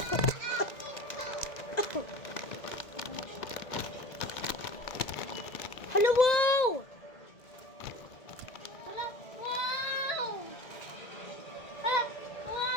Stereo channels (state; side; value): late; right; 1.9 ms